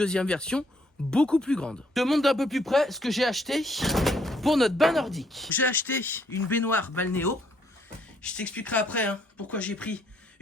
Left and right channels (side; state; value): both; normal; correlation 0.68